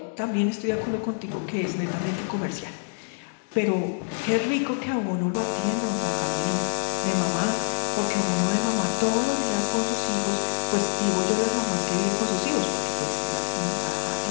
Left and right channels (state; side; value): silent; right; digital silence